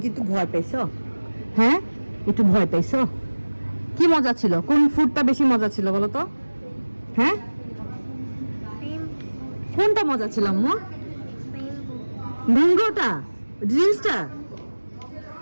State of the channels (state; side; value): inverted; both; correlation -1.00